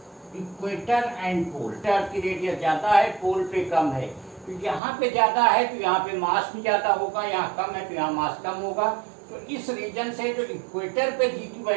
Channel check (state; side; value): drops out; left; at 4.8 s